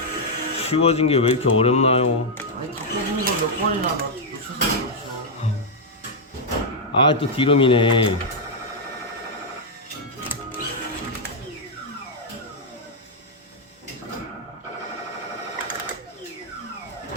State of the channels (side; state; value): both; normal; correlation -0.03